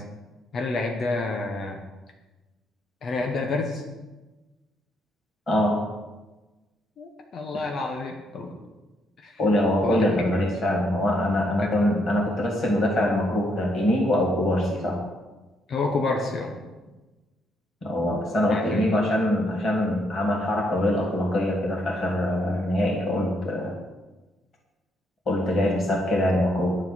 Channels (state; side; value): normal; both; correlation 0.75